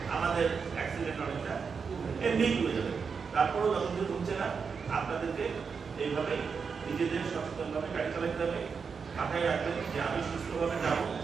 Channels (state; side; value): quieter; left; 5.7 dB